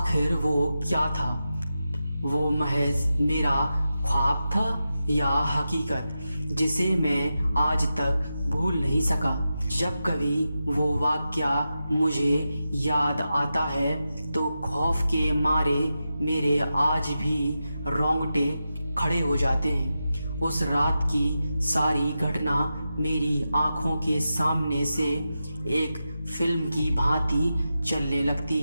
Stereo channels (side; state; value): both; inverted; correlation -0.90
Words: वो क्या था? वो महज मेरा ख्वाब था या हकीकत जिसे मैं आज तक भूल नहीं सका। जब कभी वो वाक़या मुझे याद आता है तो खौफ के मारे मेरे आज भी रोंगटे खड़े हो जाते हैं। उस रात की सारी घटना मेरी आंखों के सामने से एक फिल्म की भांति चलने लगती